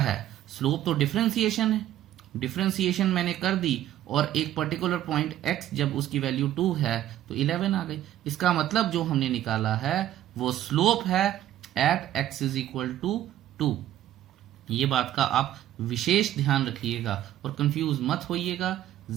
स्लोप तो डिफरेंशिएशन है, डिफरेंशिएशन मैंने कर दी और एक पर्टिकुलर पॉइंट x जब उसकी वैल्यू 2 है तो 11 आ गई। इसका मतलब जो हमने निकाला है वो स्लोप है at x is equal to 2। ये बात का आप विशेष ध्यान रखिएगा और कंफ्यूज मत होइएगा,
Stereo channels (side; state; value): left; quieter; 12.7 dB